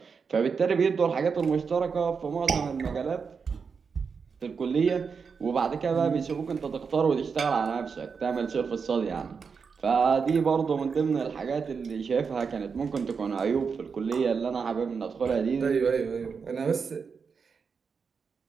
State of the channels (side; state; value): left; quieter; 5.7 dB